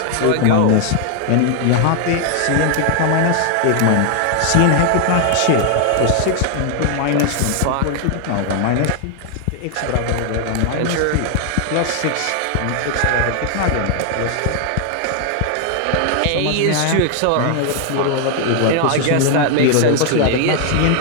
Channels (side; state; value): both; different; correlation 0.00